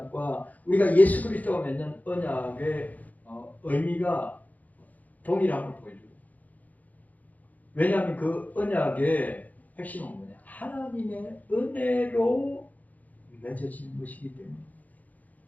우리가 예수 그리스도와 맺는 언약의 의미가 동일함을 보여줘요. 왜냐하면 그 언약의 핵심은 뭐냐? 하나님의 은혜로 맺어지는 것이기 때문에.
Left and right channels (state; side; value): late; right; 0.079 ms